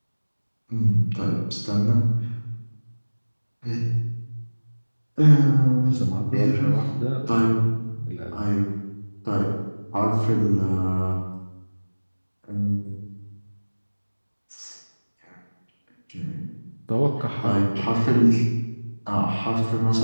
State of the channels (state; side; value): inverted; both; correlation -1.00